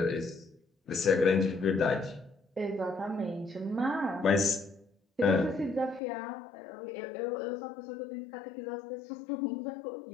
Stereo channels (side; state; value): right; drops out; at 6.0 s